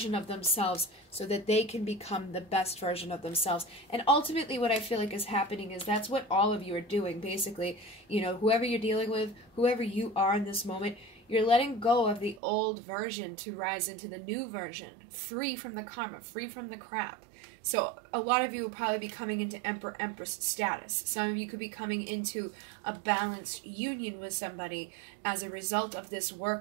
of themselves so that they can become the best version of themselves. And ultimately what I feel like is happening is that's what all of you are doing, basically. You know, whoever you're dealing with, whoever you are in this moment, you're letting go of the old version to rise into the new version, free from the karma, free from the crap. So a lot of you will probably be coming into Emperor-Empress status. Some of you could be coming into a balanced union with somebody as a result of this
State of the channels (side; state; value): left; drops out; at 12.4 s